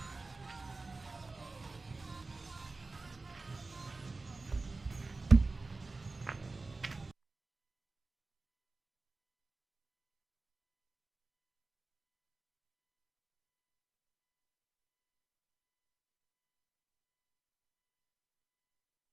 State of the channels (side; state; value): left; quieter; 3.5 dB